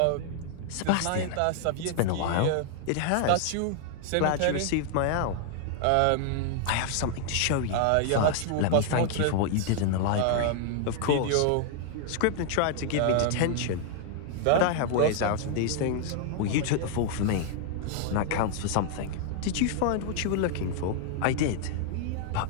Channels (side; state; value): both; different; correlation 0.00